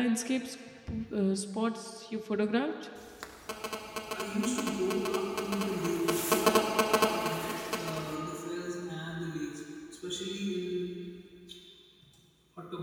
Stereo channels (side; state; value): both; identical; correlation 1.00